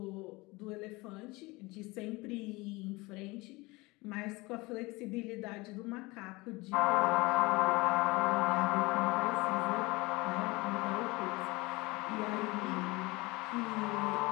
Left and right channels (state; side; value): quieter; right; 23.2 dB